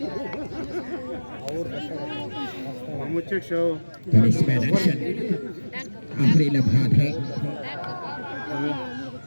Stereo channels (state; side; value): inverted; both; correlation -1.00